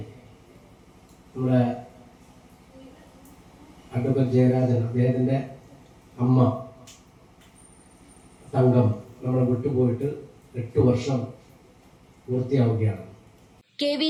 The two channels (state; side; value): identical; both; correlation 1.00